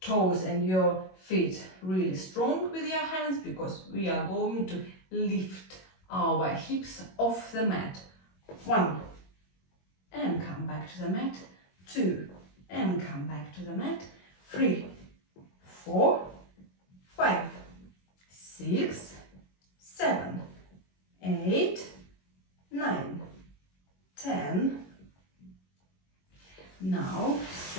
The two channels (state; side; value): late; right; 21 ms